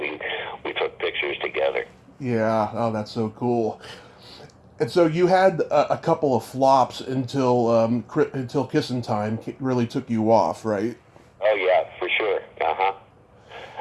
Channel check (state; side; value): identical; both; correlation 1.00